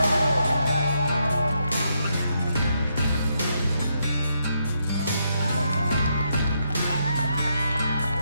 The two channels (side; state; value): both; inverted; correlation -0.79